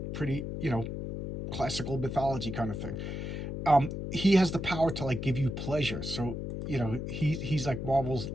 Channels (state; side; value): noise; left; hum, 5 dB below the sound